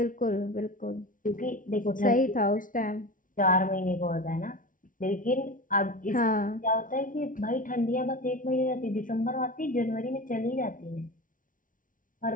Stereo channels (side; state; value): right; late; 0.38 ms